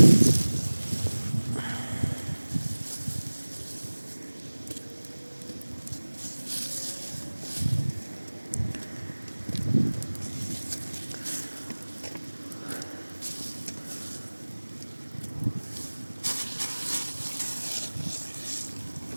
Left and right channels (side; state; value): both; inverted; correlation -1.00